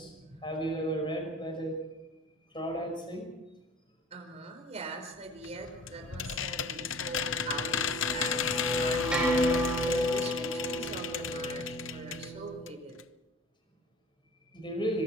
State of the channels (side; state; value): both; normal; correlation 0.45